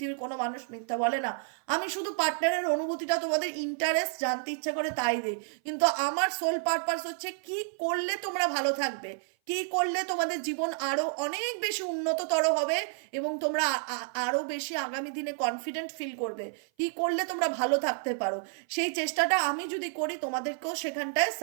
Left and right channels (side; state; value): left; silent; 55 dB below the other